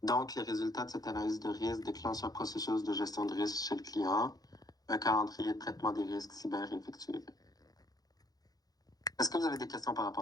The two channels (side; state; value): right; late; 0.18 ms